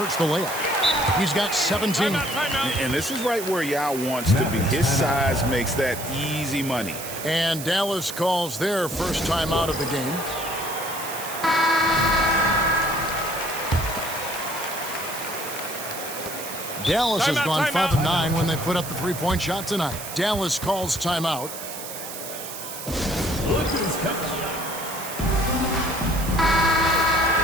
the layup. He's got 17. And this is right where Yao wants to be. His size makes that easy money. And Dallas calls their first time out of the game. Dallas has gone 5 of 9 when they put up the 3-point shot tonight. Dallas calls timeout. Look who's coming.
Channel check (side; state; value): right; noise; hiss, 9 dB below the sound